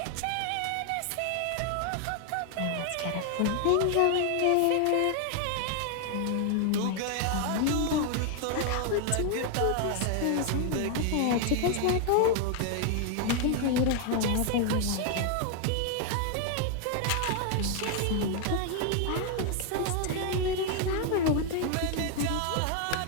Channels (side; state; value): both; different; correlation 0.00